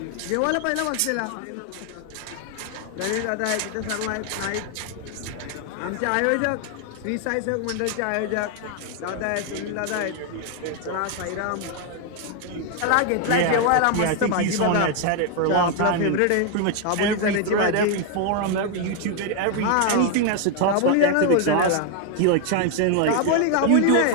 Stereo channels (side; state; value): both; different; correlation 0.01